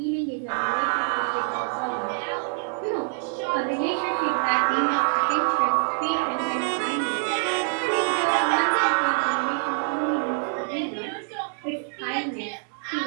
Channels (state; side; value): silent; left; 61 dB below the other